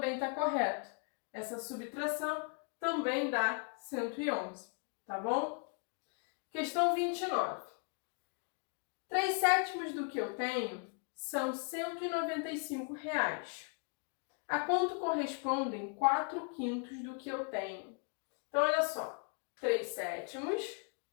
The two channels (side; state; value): right; quieter; 39.3 dB